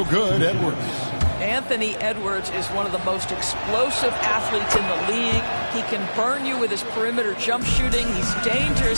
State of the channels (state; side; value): inverted; both; correlation -1.00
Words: good, Edwards. Anthony Edwards is one of the most explosive athletes in the league. He can burn you with his perimeter jump shooting. He's